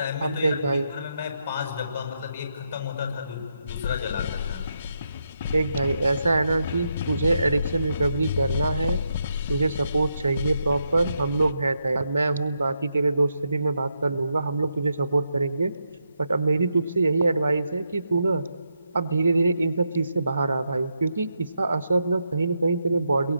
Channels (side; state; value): both; inverted; correlation -0.82